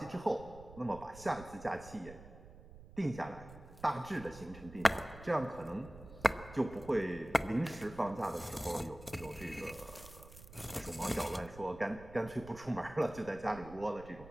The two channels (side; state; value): right; noise; rumble, 17 dB below the sound